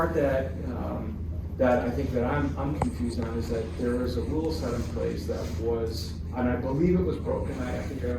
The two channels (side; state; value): both; identical; correlation 1.00